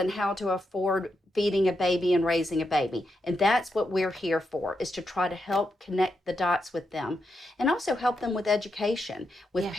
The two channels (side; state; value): both; normal; correlation 0.84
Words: how to afford feeding a baby and raising a baby. And that's what we're here for, is to try to help connect the dots with them, and also help them with education, with